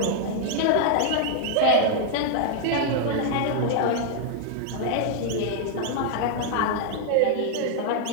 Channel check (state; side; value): different; both; correlation -0.01